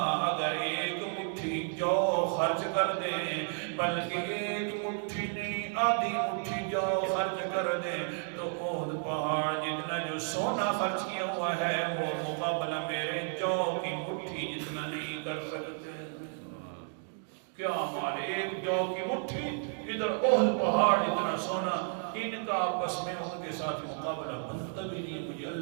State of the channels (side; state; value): left; silent; 56 dB below the other